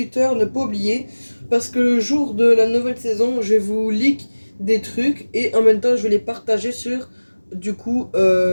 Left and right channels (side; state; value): both; inverted; correlation -1.00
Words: ne pas oublier. Parce que le jour de la nouvelle saison, je vais vous leak des trucs. Et en même temps, je vais les partager sur, du coup,